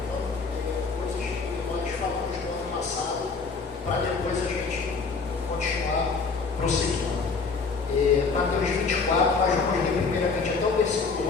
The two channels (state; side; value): quieter; right; 4.6 dB